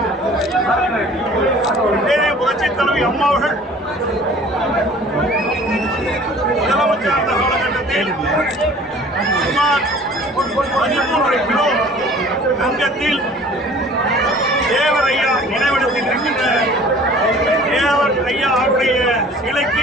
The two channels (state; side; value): normal; both; correlation 0.49